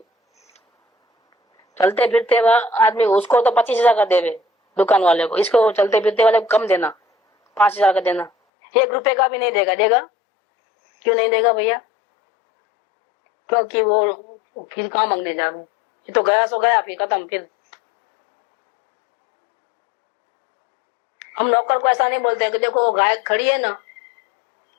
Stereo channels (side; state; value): right; drops out; at 8.3 s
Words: चलते फिरते आदमी उसको तो 25,000 का देवे दुकान वाले को, इसको चलते फिरते वाले को कम देना, 5,000 का देना, 1 रुपए का भी नहीं देगा। देगा क्यों नहीं देगा भैया? क्योंकि वो फिर कहाँ मांगने जावे, ये तो गया सो गया, फिर खत्म। फिर हम नौकर को ऐसा नहीं बोलते कि देखो वो गाय खड़ी है ना,